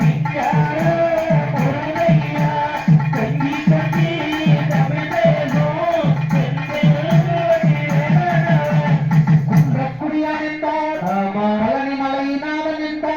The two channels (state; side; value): noise; left; rumble, 30 dB below the sound